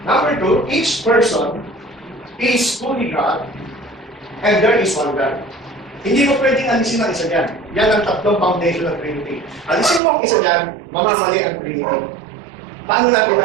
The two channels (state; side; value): drops out; left; at 10.0 s